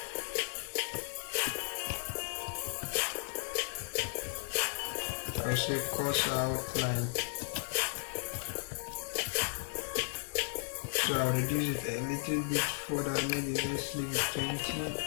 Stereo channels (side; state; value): right; silent; digital silence